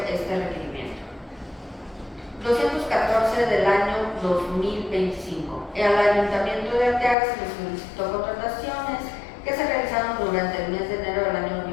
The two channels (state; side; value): drops out; right; at 7.2 s